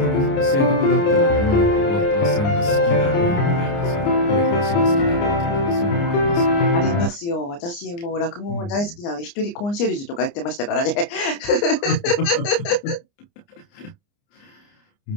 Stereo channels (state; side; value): late; right; 29 ms